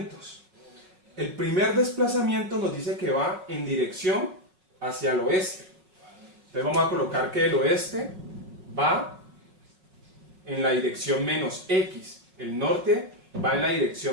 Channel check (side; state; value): left; late; 5.4 ms